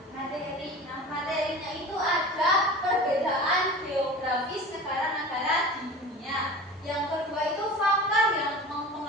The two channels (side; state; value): both; normal; correlation 0.36